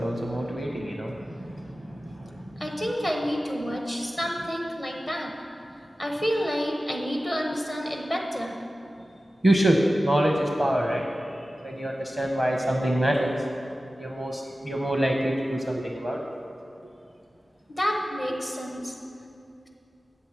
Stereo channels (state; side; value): normal; both; correlation 0.95